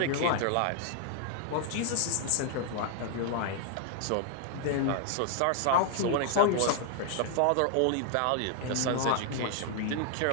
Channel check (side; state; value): both; different; correlation 0.00